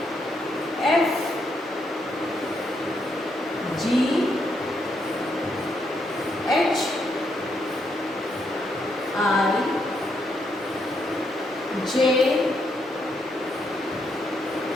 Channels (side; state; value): both; normal; correlation 0.77